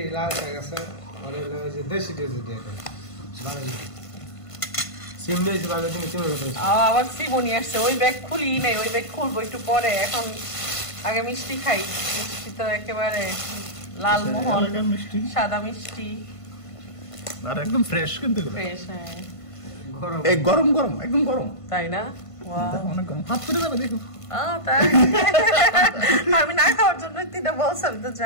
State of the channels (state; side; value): late; right; 1.5 ms